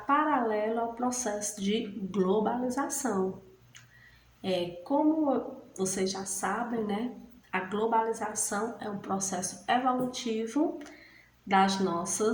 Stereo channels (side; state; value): both; identical; correlation 1.00